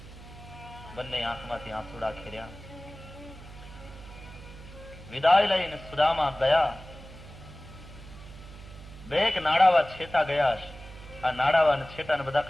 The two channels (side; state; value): right; noise; hum, 16 dB below the sound